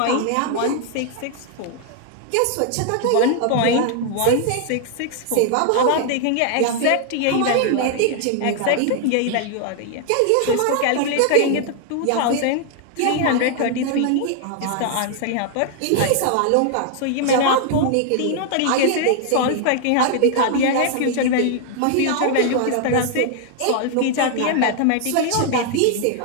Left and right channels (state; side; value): different; both; correlation 0.00